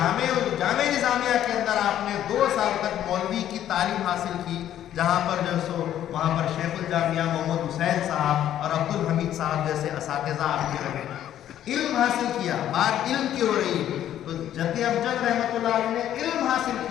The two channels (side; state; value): right; quieter; 11.3 dB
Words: نظامیہ کے اندر آپ نے 2 سال تک مولوی کی تعلیم حاصل کی, جہاں پر جو سو وہاں پر شیخ الجامعہ محمد حسین صاحب اور عبد الحمید صاحب جیسے اساتذہ آپ کے رہے, علم حاصل کیا. بات علم کی ہو رہی ہے تو جد امجد رحمۃ اللہ علیہ نے علم حاصل